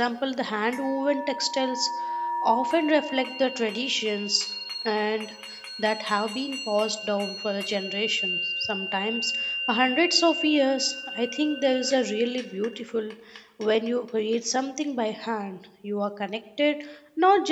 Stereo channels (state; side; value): identical; both; correlation 1.00